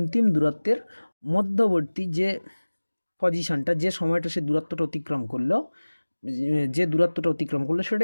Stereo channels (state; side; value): inverted; both; correlation -1.00